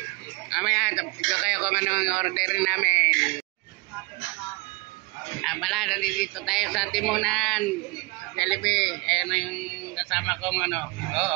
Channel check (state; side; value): quieter; left; 27.0 dB